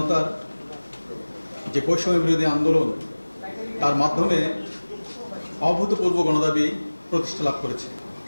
যে বৈষম্য বিরোধী আন্দোলন, তার মাধ্যমে অভূতপূর্ব গণদাবি প্রতিষ্ঠা লাভ করেছে।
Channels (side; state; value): both; inverted; correlation -1.00